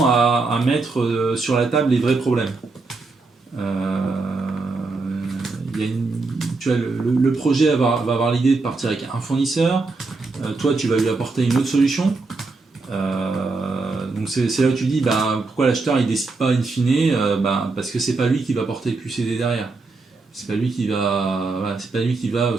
à mettre sur la table les vrais problèmes. Tu vois, le projet va avoir l'idée de partir avec un fournisseur, toi tu vas lui apporter une autre solution. Donc c'est là où tu dis pourquoi l'acheteur il décide pas in fine, parce que c'est pas lui qui va porter le QCD derrière. C'est pas lui qui va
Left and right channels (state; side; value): quieter; left; 3.8 dB